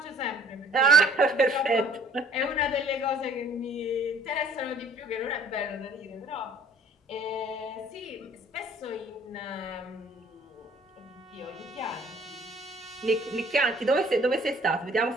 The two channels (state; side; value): normal; both; correlation 0.55